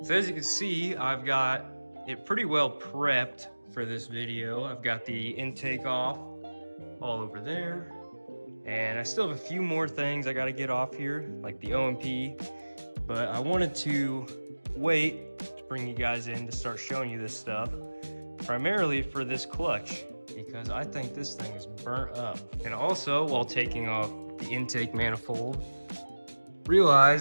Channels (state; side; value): inverted; both; correlation -1.00